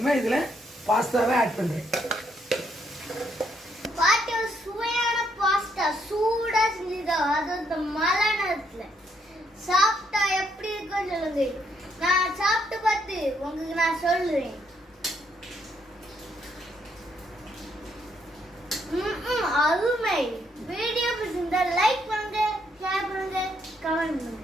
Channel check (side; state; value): both; normal; correlation 0.74